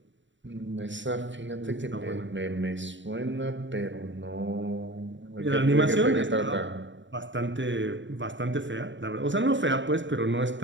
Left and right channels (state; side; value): late; left; 0.54 ms